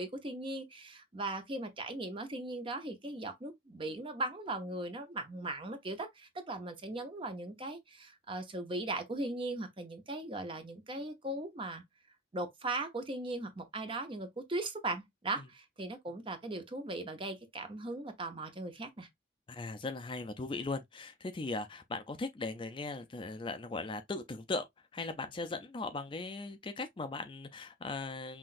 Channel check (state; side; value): normal; both; correlation 0.27